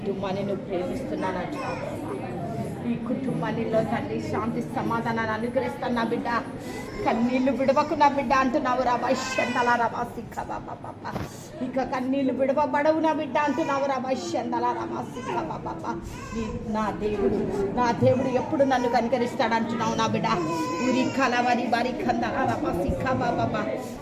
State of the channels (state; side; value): identical; both; correlation 1.00